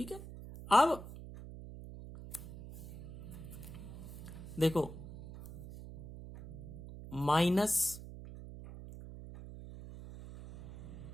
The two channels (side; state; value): right; noise; hum, 12 dB below the sound